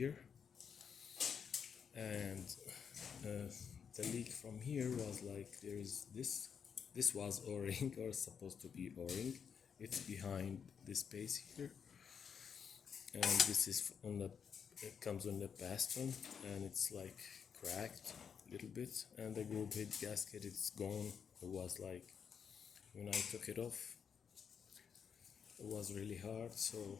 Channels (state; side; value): quieter; right; 7.0 dB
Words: and the leak from here was like there is this. This was O-ring or supposed to be O-ring. It's behind this space here, and this is on the, it comes on the piston, and it's like cracked a little bit, and the group head gasket, it's gone. It was like when I took it off, it was really hard. So